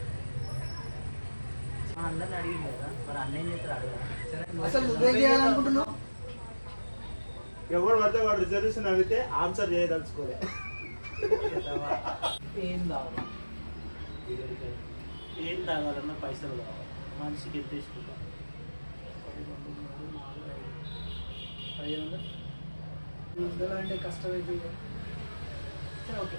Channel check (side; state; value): both; inverted; correlation -1.00